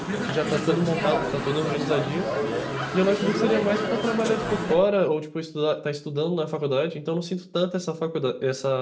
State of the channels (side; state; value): both; identical; correlation 1.00